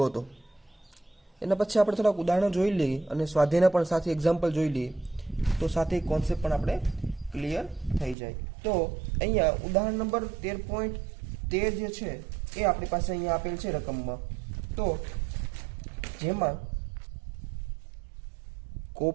હતો. એના પછી આપણે થોડાક ઉદાહરણો જોઈ લઈએ અને સ્વાધ્યાયના પણ સાથે એક્ઝામ્પલ જોઈ લઈએ તો સાથે કોન્સેપ્ટ પણ આપણે ક્લિયર થઈ જાય. તો અહીંયા ઉદાહરણ નંબર 13.13 જે છે એ આપણી પાસે અહીંયા આપેલ છે રકમમાં. તો જેમાં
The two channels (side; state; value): left; drops out; at 8.2 s